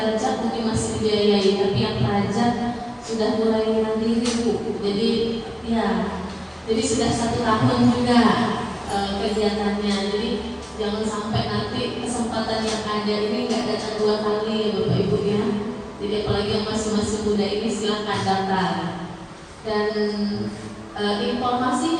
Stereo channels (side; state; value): both; identical; correlation 1.00